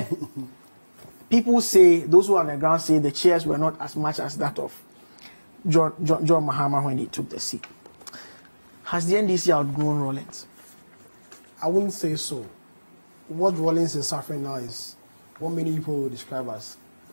People say, those who are on the ground say the chairs were not as much as that of John Mahama when he took the seat. Has the NDC outgrown Rawlings? I wouldn't say so. What Rawlings is suffering now is what many people would describe as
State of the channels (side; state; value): both; inverted; correlation -1.00